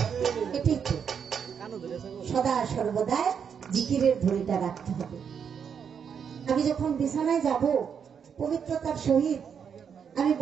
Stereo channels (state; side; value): quieter; left; 7.2 dB